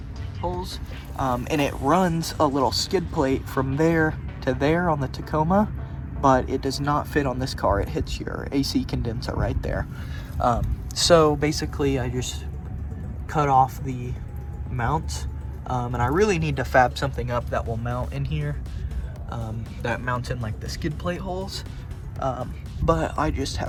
holes, and it runs a little skid plate from there to there on the Tacoma, but it does not fit on this car. It hits your AC condenser right there. So basically I just cut off the mounts, and I really need to fab something up that will mount in here, that mounts in like the skid plate holes, but I just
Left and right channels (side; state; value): both; identical; correlation 1.00